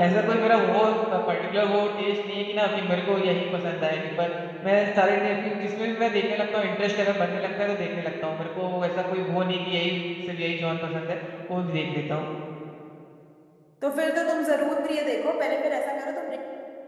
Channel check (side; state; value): both; identical; correlation 1.00